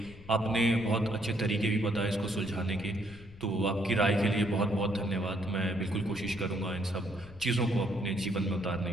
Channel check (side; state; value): left; noise; rumble, 19 dB below the sound